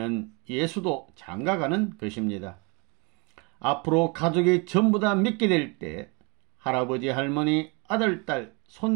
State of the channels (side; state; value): left; quieter; 31.2 dB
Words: 예수도 장가가는 것입니다. 앞으로 가족이 전부 다 믿게 될 때 할아버지, 할머니, 아들, 딸,